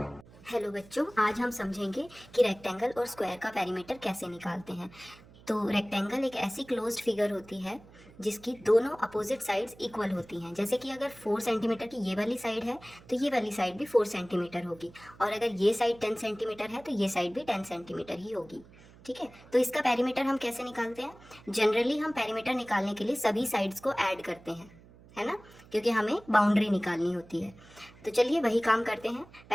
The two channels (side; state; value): right; noise; hum, 23 dB below the sound